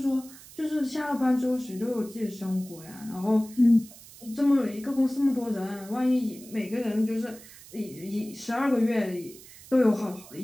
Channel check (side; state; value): right; noise; hiss, 19 dB below the sound